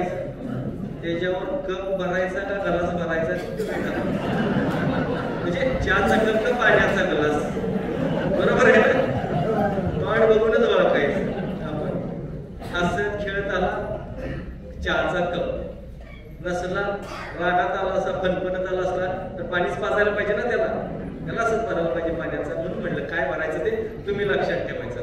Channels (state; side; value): identical; both; correlation 1.00